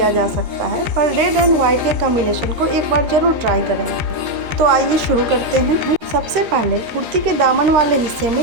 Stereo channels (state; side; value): late; left; 13 ms